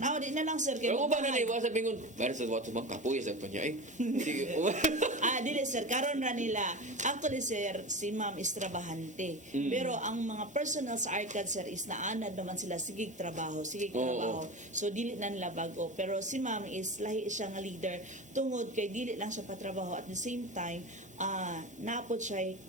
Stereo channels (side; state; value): both; normal; correlation 0.27